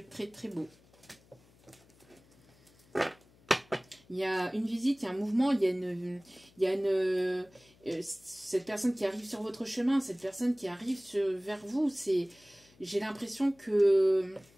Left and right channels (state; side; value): noise; left; hum, 29 dB below the sound